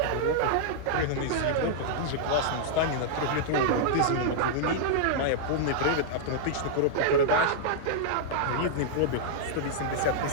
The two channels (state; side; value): different; both; correlation -0.01